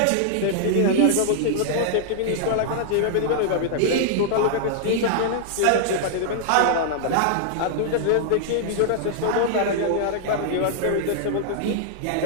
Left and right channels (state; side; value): different; both; correlation -0.01